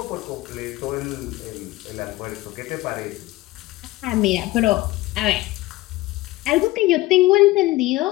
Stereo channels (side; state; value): right; quieter; 18.7 dB